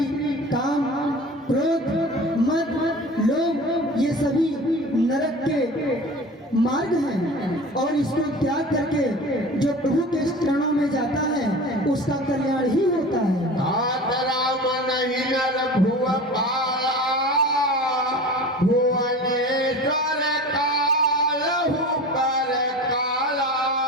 काम क्रोध मद लोभ ये सभी नरक के मार्ग हैं, और इसको त्याग करके जो प्रभु के चरणों में जाता है उसका कल्याण ही होता है। राम नहीं नर भुव पाला भुवनेश्वर कालहु पर काला।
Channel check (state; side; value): normal; both; correlation 0.36